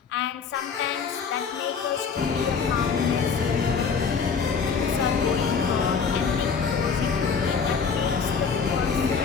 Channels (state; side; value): quieter; right; 5.9 dB